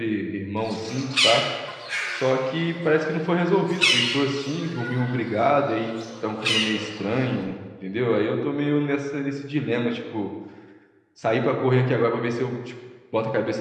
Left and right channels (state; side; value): identical; both; correlation 1.00